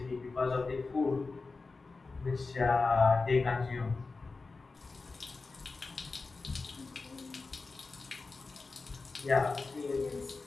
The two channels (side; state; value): right; quieter; 3.9 dB